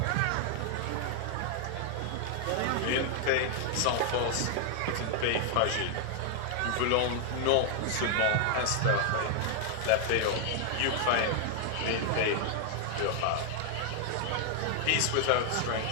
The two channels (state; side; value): different; both; correlation 0.00